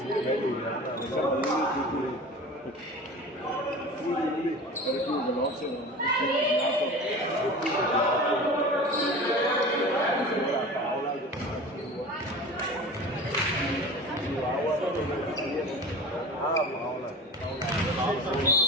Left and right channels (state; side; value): normal; both; correlation 0.35